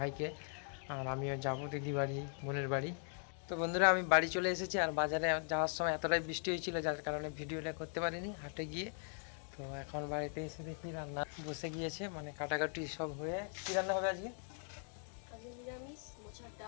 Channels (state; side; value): silent; right; 51 dB below the other